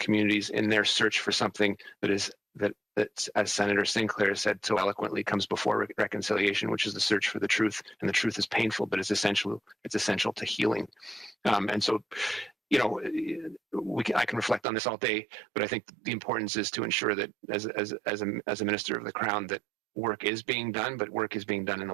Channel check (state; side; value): drops out; left; at 14.6 s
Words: in their search for something that, as Senator Sinclair said so eloquently, comes before reconciliation, which is the search for the truth. And the truth is painful, but it's essential to healing. And so, you know, I can reflect on this all day, but I think the importance is to ensure that as a minister of the Crown, that work is being done, but work is being done in a